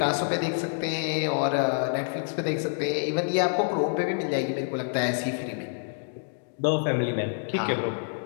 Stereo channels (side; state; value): right; silent; digital silence